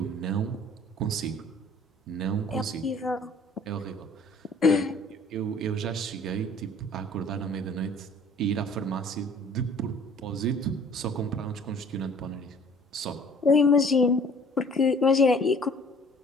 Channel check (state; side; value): normal; both; correlation 0.53